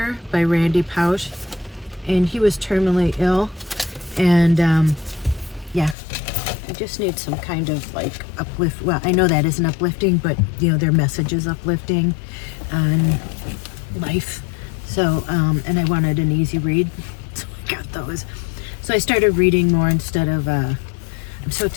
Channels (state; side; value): drops out; right; at 6.0 s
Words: by Randy Pausch. And he was terminally ill. And yeah, I just need some kind of like uplift. Well, I know that isn't uplifting, but you know, their message is uplifting on life. So, and I wanted an easy read, so I got those. So I started reading more instead of, I'm so